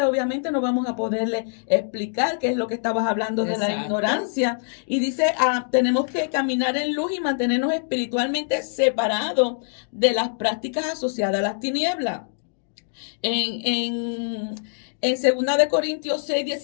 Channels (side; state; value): right; silent; digital silence